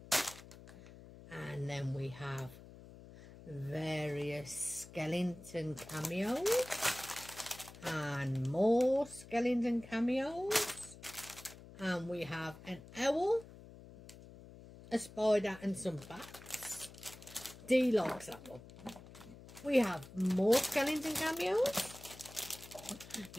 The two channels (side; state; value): left; noise; hum, 17 dB below the sound